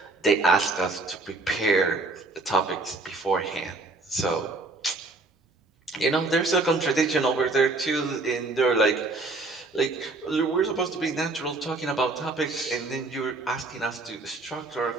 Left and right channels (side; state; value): left; quieter; 3.2 dB